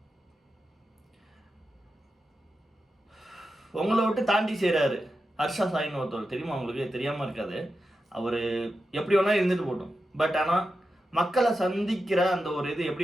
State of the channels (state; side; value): normal; both; correlation 0.90